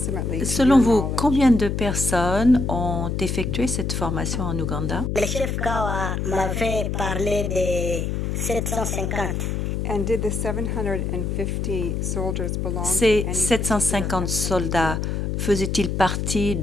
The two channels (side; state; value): left; noise; hum, 1 dB below the sound